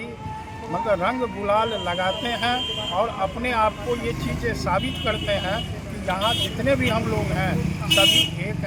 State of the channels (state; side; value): identical; both; correlation 1.00